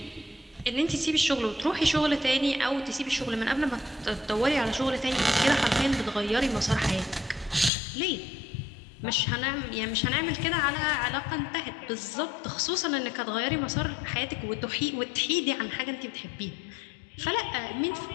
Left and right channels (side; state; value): right; drops out; at 7.7 s